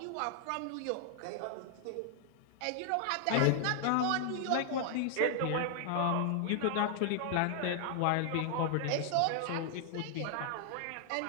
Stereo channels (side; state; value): both; different; correlation 0.00